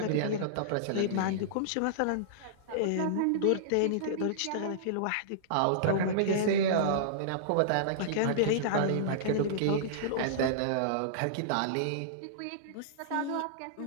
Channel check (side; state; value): both; different; correlation -0.02